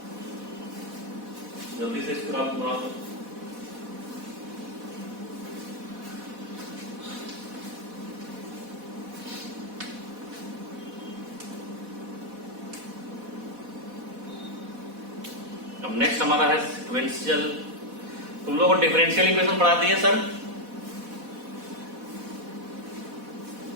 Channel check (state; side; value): late; left; 4.1 ms